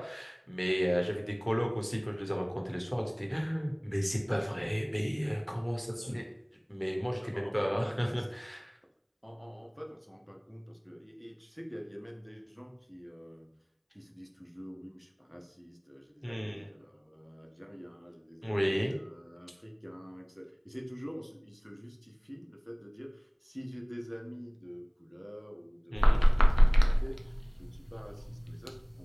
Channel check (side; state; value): both; identical; correlation 1.00